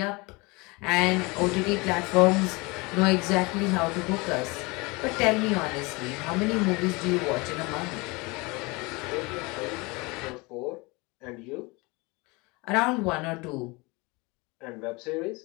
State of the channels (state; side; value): quieter; right; 25.8 dB